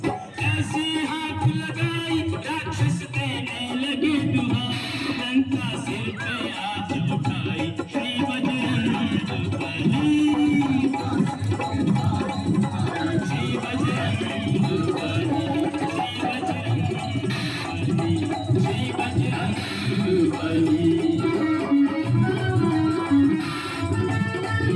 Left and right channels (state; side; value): identical; both; correlation 1.00